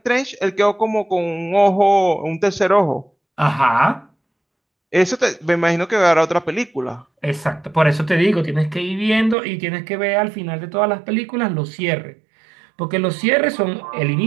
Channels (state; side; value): drops out; left; at 9.3 s